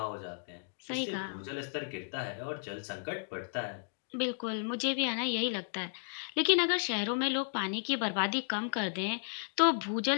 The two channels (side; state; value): right; silent; digital silence